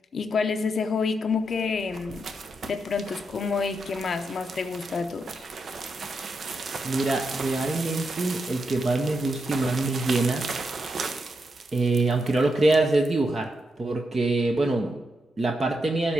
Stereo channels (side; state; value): both; normal; correlation 0.84